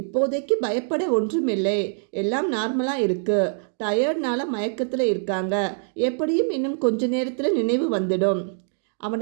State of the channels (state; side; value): silent; left; 63 dB below the other